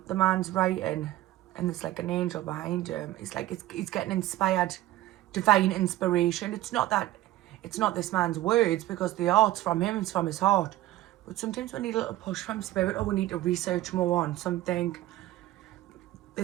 man's writing, and there's like an angel behind him. It's like he's getting inspired, divine inspiration. It's not this man's words, because the art's from him, it's from his heart. But sometimes we need a little push from spirit, or we need to research more on something.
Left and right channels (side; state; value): left; quieter; 15.6 dB